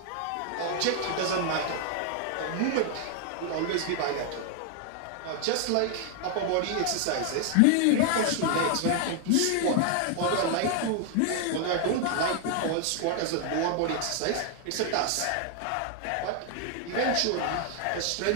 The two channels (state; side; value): different; both; correlation 0.00